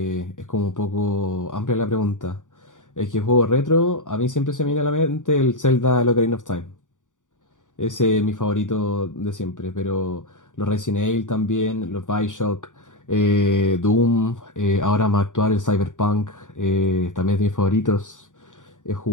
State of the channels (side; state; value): right; late; 0.87 ms